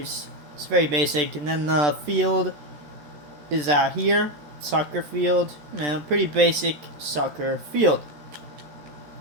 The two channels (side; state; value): left; late; 13 ms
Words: It's very basic. And then the field is out here. Soccer field. You know, pretty basic soccer field.